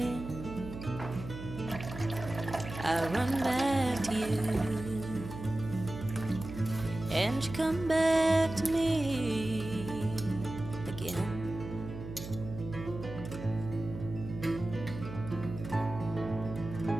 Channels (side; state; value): right; noise; hum, 10 dB below the sound